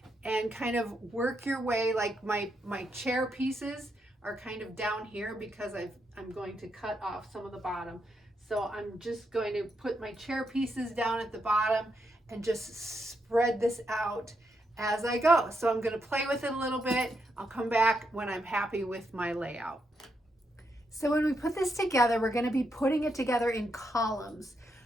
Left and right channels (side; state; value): both; normal; correlation 0.81